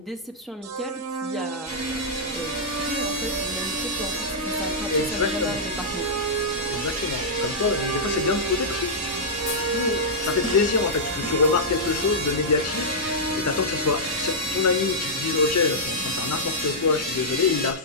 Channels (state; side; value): normal; both; correlation -0.09